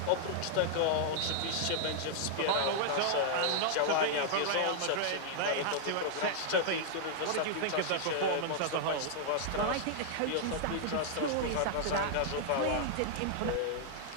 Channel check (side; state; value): both; different; correlation -0.01